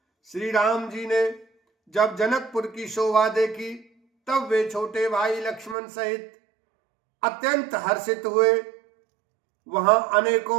श्री राम जी ने जब जनकपुर की शोभा देखी, तब वे छोटे भाई लक्ष्मण सहित अत्यंत हर्षित हुए। वहां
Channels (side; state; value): left; drops out; at 5.8 s